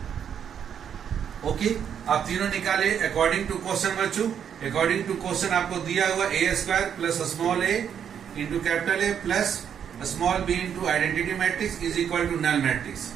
ओके, आप तीनों निकाले अकॉर्डिंग टू क्वेश्चन बच्चों। अकॉर्डिंग टू क्वेश्चन आपको दिया हुआ A square plus small A into capital A plus small B into identity matrix is equal to null matrix.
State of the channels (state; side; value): quieter; left; 8.3 dB